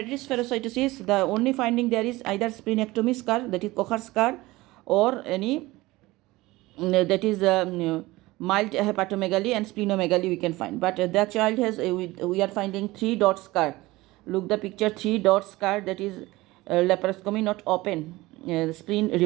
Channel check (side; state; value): left; quieter; 19.7 dB